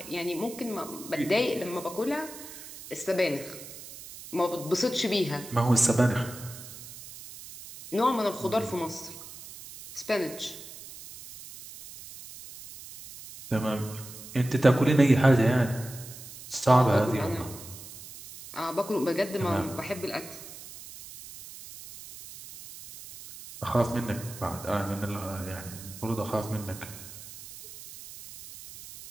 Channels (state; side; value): noise; right; hiss, 15 dB below the sound